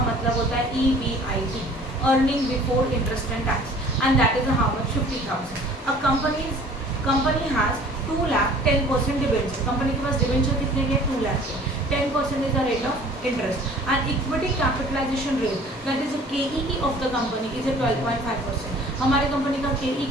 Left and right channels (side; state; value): both; normal; correlation 0.50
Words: मतलब होता है EBIT, earning before interest and tax, and that is how much, 50,000. A company has 2 lakh 10% debenture, company के पास डिबेंचर कितने के, 2 लाख के, 10% is the rate of interest, and equity capitalization rate, that is the KEE of the company is a 12.5%. हमारे कंपनी का KE